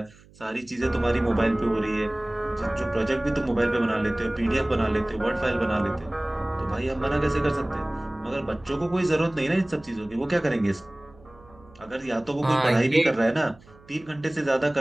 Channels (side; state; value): right; noise; hum, 26 dB below the sound